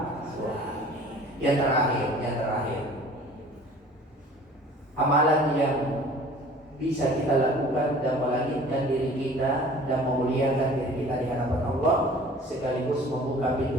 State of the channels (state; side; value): normal; both; correlation 0.47